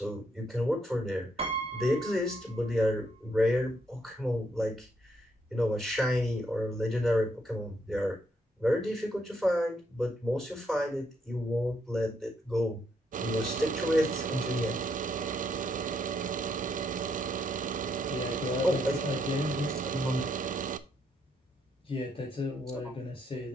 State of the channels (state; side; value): normal; both; correlation 0.75